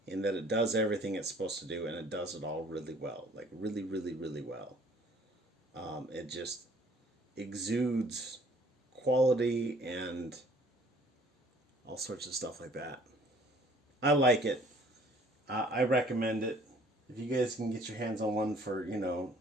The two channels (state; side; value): normal; both; correlation 0.57